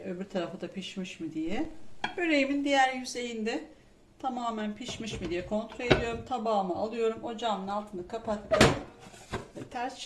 tarafı da pişmiş mi diye. Böreğimin diğer yüzeyinde tamamen pişmiş mi diye kontrol ediyorum. Tabağımı alıyorum. Ocağımın altını kapattım. Ve ters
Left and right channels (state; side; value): identical; both; correlation 1.00